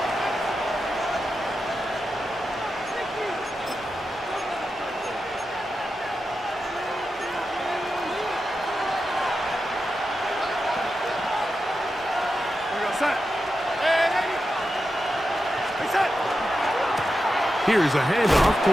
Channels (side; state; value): both; normal; correlation 0.89